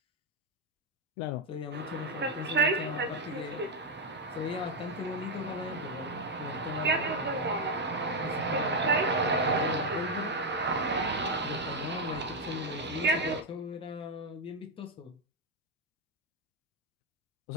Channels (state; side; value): normal; both; correlation 0.03